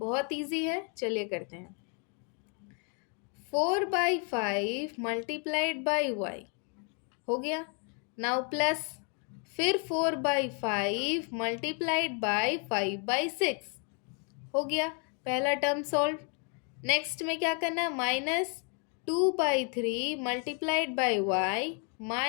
इजी है, चलिए करते हैं। 4/5 मल्टीप्लाइड बाई y हो गया। नाउ प्लस, फिर 4/5 मल्टीप्लाइड बाई 5/6 हो गया। पहला टर्म सॉल्व। नेक्स्ट में क्या करना है, -2/3 multiplied by y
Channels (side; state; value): right; quieter; 38.7 dB